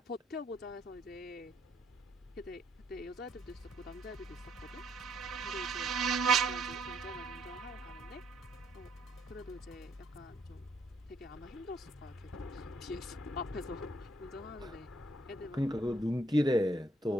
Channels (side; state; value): both; normal; correlation 0.69